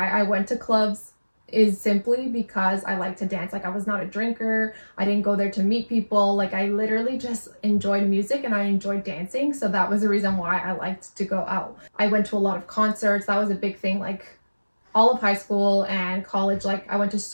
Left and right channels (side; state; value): both; inverted; correlation -1.00